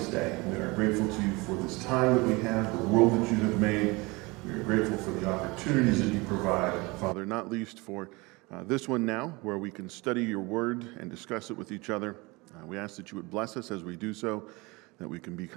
day. We are grateful to you for this time that we have, the world that you have made. We are grateful for the opportunities that you provide, Father, not least for this one now, where we can study your word and discuss it with each other. We ask that you would bless us as we do so, that we can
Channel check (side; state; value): left; quieter; 24.7 dB